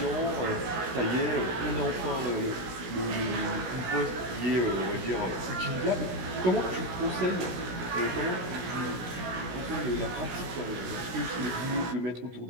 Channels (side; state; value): left; late; 16 ms